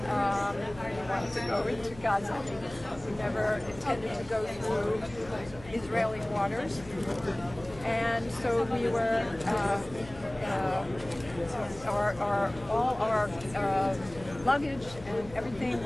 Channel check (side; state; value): left; noise; hum, 18 dB below the sound